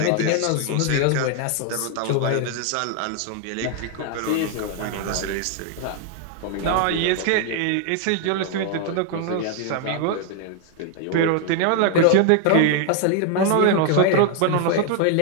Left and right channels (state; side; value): different; both; correlation 0.00